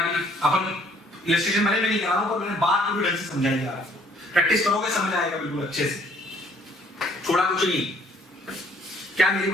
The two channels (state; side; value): normal; both; correlation 0.61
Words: अपन इलस्ट्रेशन मैंने नहीं करा रहा हूं, पर मैंने बात पूरी ढंग से समझाई जा रहा है। प्रैक्टिस करोगे समझ आएगा बिल्कुल अच्छे से, छोड़ा कुछ नहीं। क्या मेरी